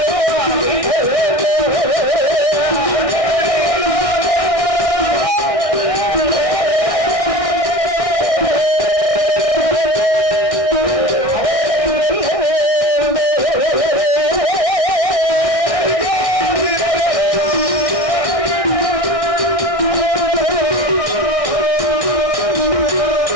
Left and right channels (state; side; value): late; right; 1.6 ms